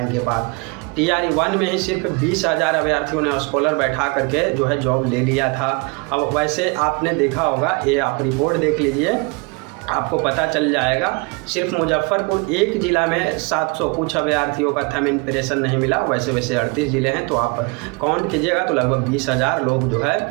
इनके पास। TRE 1 में ही सिर्फ 20,000 अभ्यर्थियों ने स्कॉलर बैठा करके जो है जॉब ले लिया था। अब वैसे आपने देखा होगा, ये आप रिपोर्ट देख लीजिए, आपको पता चल जाएगा। सिर्फ मुजफ्फरपुर एक ज़िला में 700 कुछ अभ्यर्थियों का थंब इम्प्रेशन नहीं मिला, वैसे 38 ज़िले हैं, तो आप काउंट कीजिएगा तो लगभग 20,000 लोग जो है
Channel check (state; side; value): quieter; left; 29.9 dB